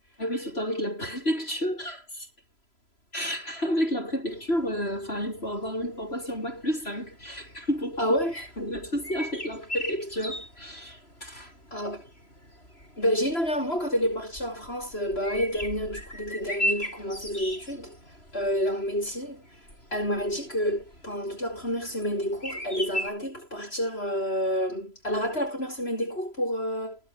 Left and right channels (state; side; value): late; right; 3.0 ms